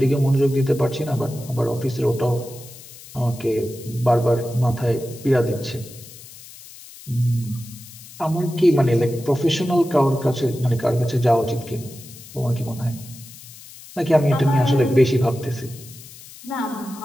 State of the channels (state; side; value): noise; left; hiss, 18 dB below the sound